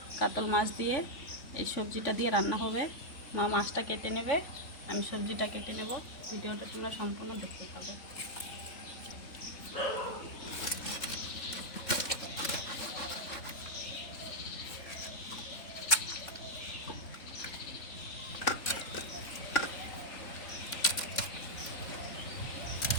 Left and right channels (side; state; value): right; late; 3.7 ms